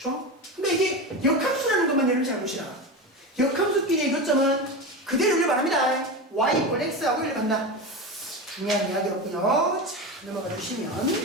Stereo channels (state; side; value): normal; both; correlation 0.22